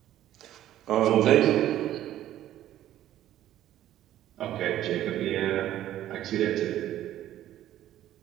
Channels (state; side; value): quieter; left; 12.7 dB